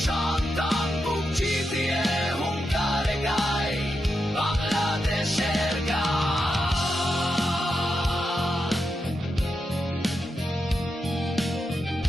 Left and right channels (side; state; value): both; normal; correlation 0.86